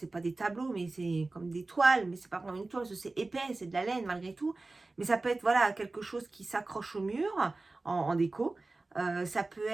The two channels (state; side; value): quieter; left; 3.3 dB